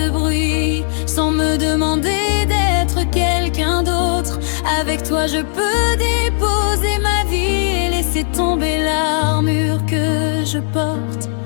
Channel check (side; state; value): right; silent; digital silence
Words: bruit, sans me demander d'être quelqu'un d'autre. Avec toi je peux déposer ma vie et laisser tomber l'armure que je porte.